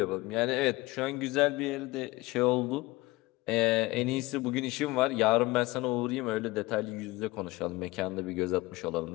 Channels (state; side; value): quieter; right; 21.0 dB